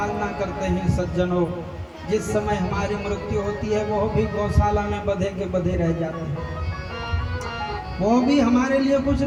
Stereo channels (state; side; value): identical; both; correlation 1.00